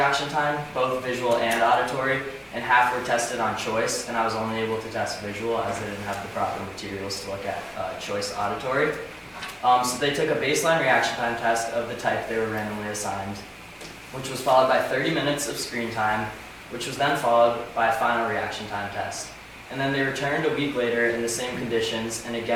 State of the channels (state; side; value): identical; both; correlation 1.00